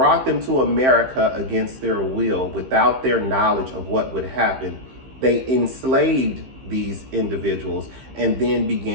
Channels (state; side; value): late; left; 15 ms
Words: them to America against their will, without their knowledge of what would happen. They enslaved these individuals and then